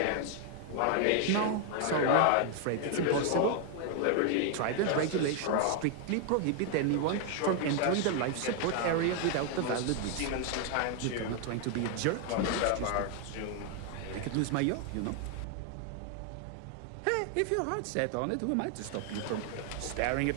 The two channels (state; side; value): different; both; correlation 0.00